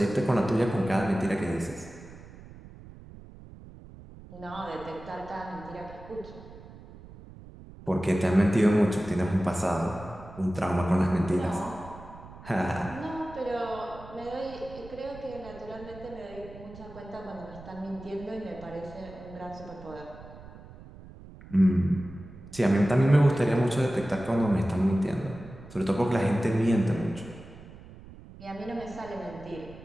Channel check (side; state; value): right; noise; rumble, 17 dB below the sound